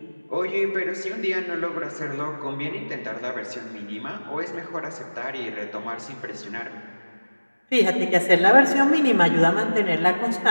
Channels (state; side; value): inverted; both; correlation -1.00